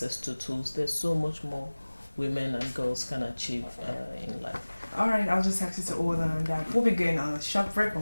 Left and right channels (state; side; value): inverted; both; correlation -1.00